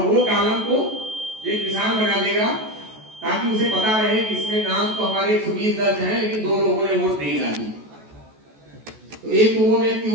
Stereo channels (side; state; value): left; late; 14 ms